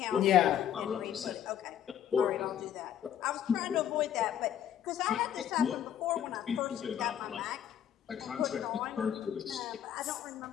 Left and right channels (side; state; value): right; quieter; 10.0 dB